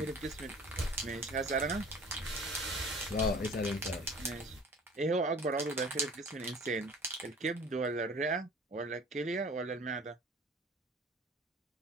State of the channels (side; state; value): both; normal; correlation 0.46